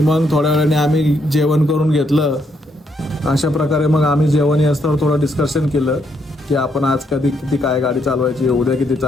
मग थोड्या वेळाने आम्ही जेवण करून घेतलं. अशा प्रकारे मग आम्ही जेवण असताना थोडं डिस्कशन केलं की आपण आज किती काय गाडी चालवायची, उद्या किती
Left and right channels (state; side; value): normal; both; correlation 0.75